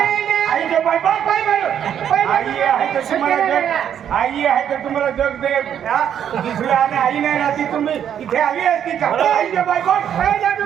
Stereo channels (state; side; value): quieter; left; 9.3 dB